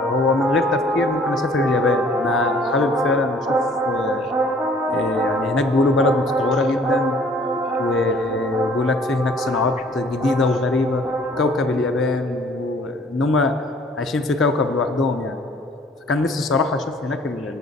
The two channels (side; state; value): both; normal; correlation 0.56